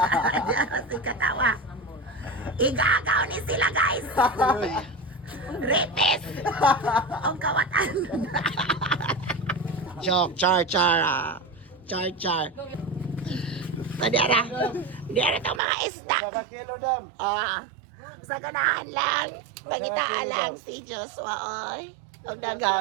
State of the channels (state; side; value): drops out; left; at 15.6 s